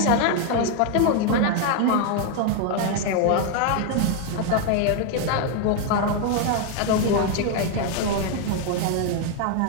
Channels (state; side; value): different; both; correlation 0.01